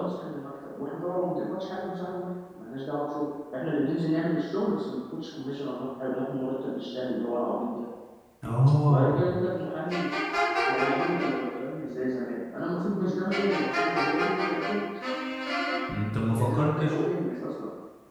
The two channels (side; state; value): both; identical; correlation 1.00